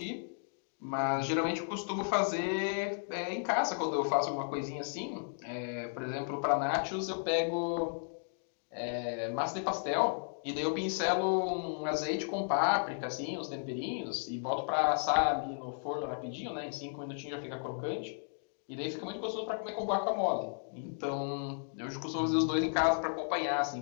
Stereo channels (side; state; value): right; silent; digital silence